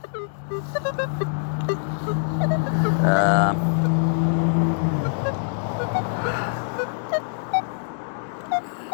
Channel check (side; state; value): right; silent; digital silence